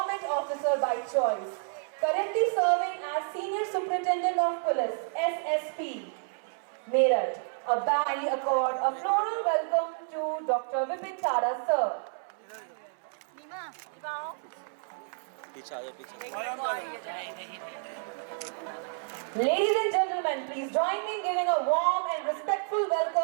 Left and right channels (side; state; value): left; silent; 58 dB below the other